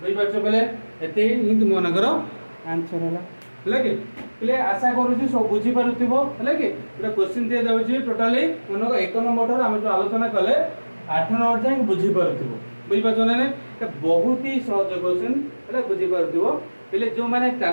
पाछो बेले एते ही तुमनकर आंसर होला लगे प्ले आशा करू छी सब बुझी पारुथिबो हले कि पूरा क्वेश्चन दे दउ छी टोटली मनक 1 नंबर हम जो आलोचना कले 8 नंबर जाय बुझी पारुथिबो बुझि पाछो ने बहुत ही सहज क्वेश्चन हले बुझी पारुथिबो पहले जो माने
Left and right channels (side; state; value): both; inverted; correlation -1.00